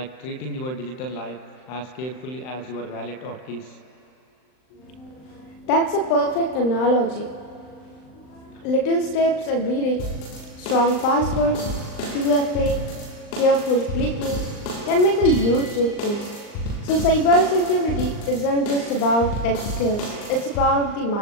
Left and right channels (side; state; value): right; late; 39 ms